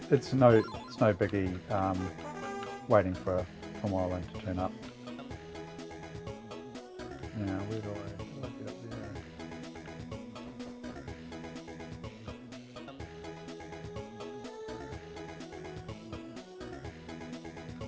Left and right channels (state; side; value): identical; both; correlation 1.00